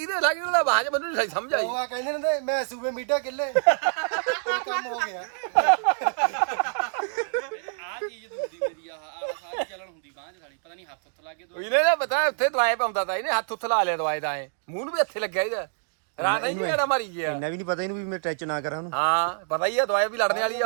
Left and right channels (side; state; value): left; silent; digital silence